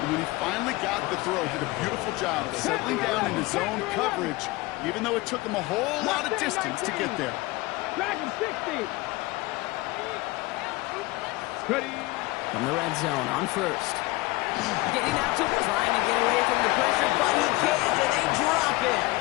when he finally got the throw. Did a beautiful job of settling down into zone coverage, even though it took him a whole lot of distance to get there. Dragon 60. Ready. From the red zone on first. Getting out to trying to get away from the pressure, but he can't, and they drop it.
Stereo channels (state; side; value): quieter; right; 21.1 dB